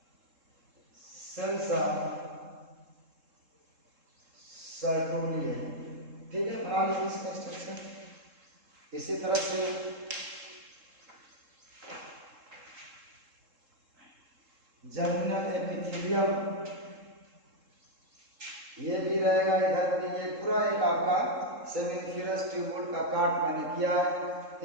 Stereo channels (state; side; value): late; left; 3.7 ms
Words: सेल्स ऑफ सर्टोरी है, ठीक है। बना लीजिए इसका स्ट्रक्चर। इसी तरह से जर्मिनल एपिथेलियम ये भी रहेगा इधर भी। ये पूरा एक आपका सेमिनिफेरस ट्यूबुल का काट मैंने किया है।